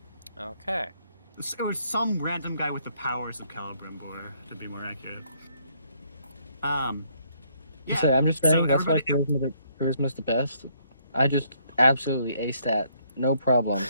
Okay. It was some random guy with the powers of Celebrimbor, to be more accurate. Yeah. So I'm just So saying that's why everybody, charisma's the best. I just absolutely aced that, no problem,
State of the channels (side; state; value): both; inverted; correlation -0.68